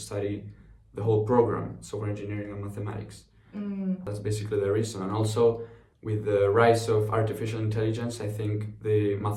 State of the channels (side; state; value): both; identical; correlation 1.00